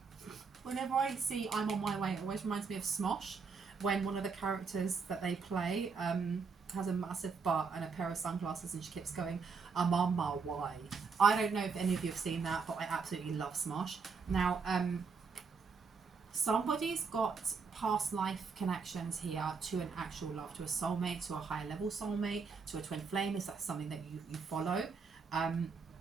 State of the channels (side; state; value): left; quieter; 5.2 dB